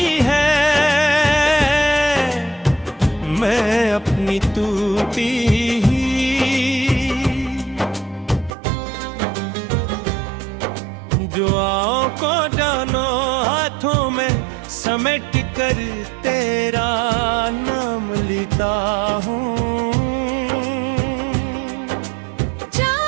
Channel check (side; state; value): left; drops out; at 8.6 s